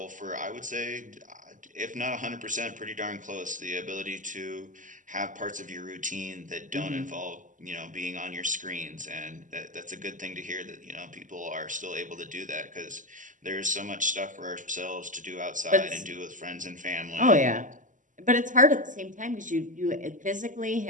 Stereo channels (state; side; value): late; left; 0.37 ms